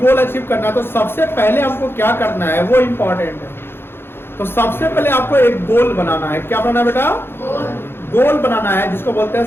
अचीव करना है तो सबसे पहले हमको क्या करना है वो इंपॉर्टेंट है। तो सबसे पहले आपको एक गोल बनाना है। क्या बनाना है बेटा? गोल बनाना है, जिसको बोलते हैं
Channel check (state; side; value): late; right; 0.11 ms